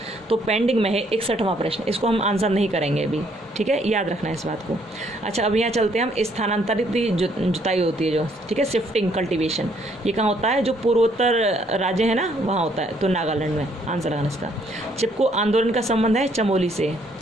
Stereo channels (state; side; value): normal; both; correlation 0.68